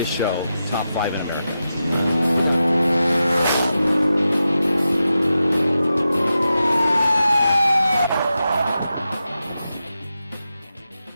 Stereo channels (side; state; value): both; inverted; correlation -0.90